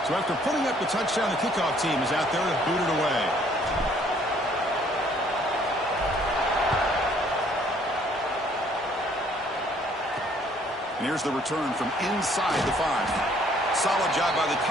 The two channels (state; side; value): normal; both; correlation 0.61